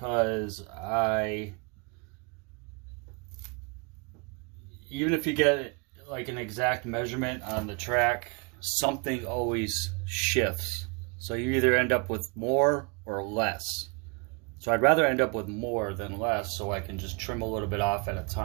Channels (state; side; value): quieter; left; 33.0 dB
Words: even if you get like an exact measurement on the track, something always shifts. So you either end up with more or less. So I'd rather end up with more than less, so I can just trim a little bit off at a